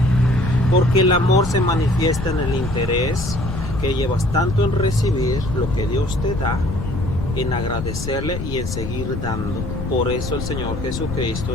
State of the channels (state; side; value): noise; left; rumble, 6 dB below the sound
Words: Porque el amor se manifiesta en el interés que llevas tanto en recibir lo que Dios te da, en agradecerle y en seguir dando. Por eso el Señor